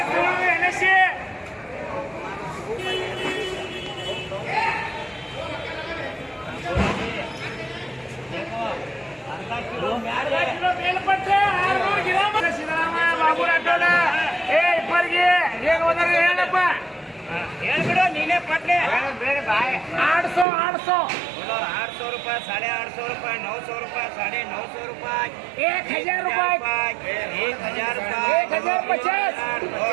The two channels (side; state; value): left; drops out; at 20.5 s